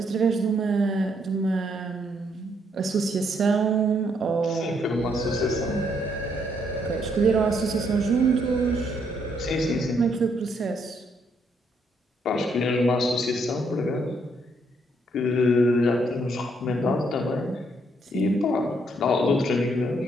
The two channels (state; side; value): normal; both; correlation 0.72